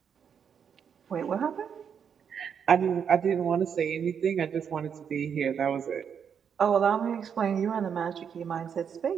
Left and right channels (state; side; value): quieter; left; 7.4 dB